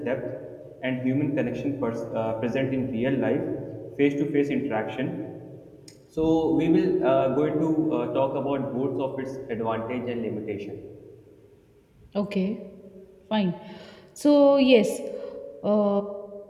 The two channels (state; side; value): identical; both; correlation 1.00